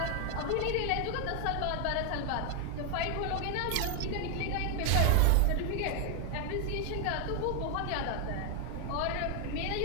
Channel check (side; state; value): both; different; correlation 0.00